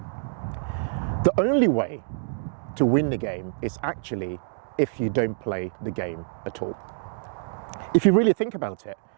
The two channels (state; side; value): silent; left; digital silence